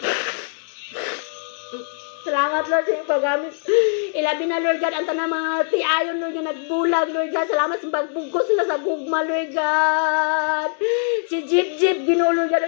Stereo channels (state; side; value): silent; right; digital silence